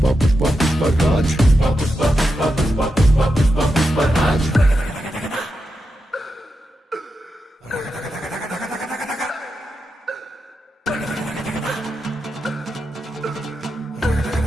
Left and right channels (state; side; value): normal; both; correlation 0.88